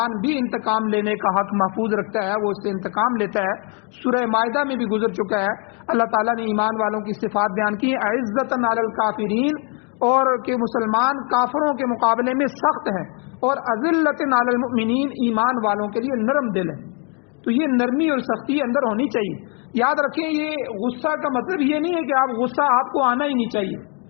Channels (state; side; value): quieter; right; 36.4 dB